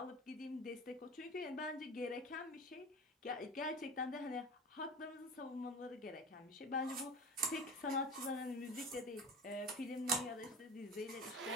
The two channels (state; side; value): normal; both; correlation 0.33